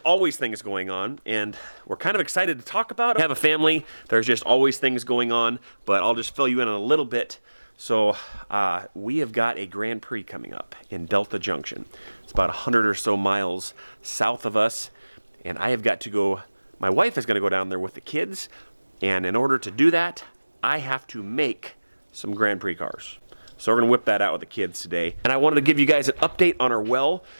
always things going on, and we're kind of excited to talk about it. I have a family. There's just always things going on, but I'll just fill you in on a little bit. So we have got a Grand Prix coming up in Delta Junction. It's about 100 or so miles south of us, and I have got to go. My wife is going to go down there with the kids. And in order to do that, I have to make some Grand Prix cars. So we're going to whip that out with the kids today. And I wanted to give you guys an update on our well.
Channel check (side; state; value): both; inverted; correlation -1.00